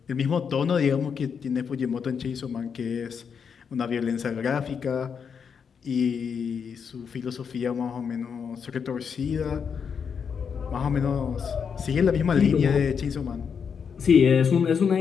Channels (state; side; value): quieter; right; 6.6 dB